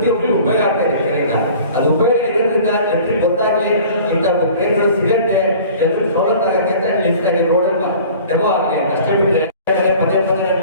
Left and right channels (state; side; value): inverted; both; correlation -0.46